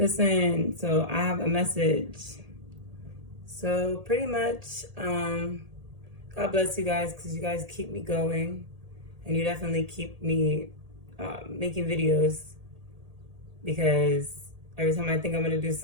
so I have a message. So pretty much, God bless you guys because you guys keep me going, and you definitely keep me making videos because every time I think I'm gonna do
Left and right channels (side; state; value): left; late; 1.8 ms